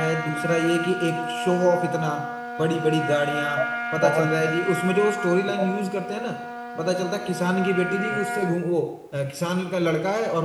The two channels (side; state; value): both; identical; correlation 1.00